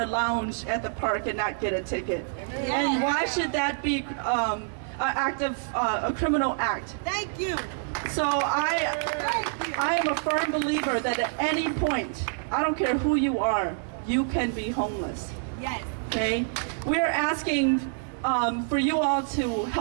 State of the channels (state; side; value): silent; left; digital silence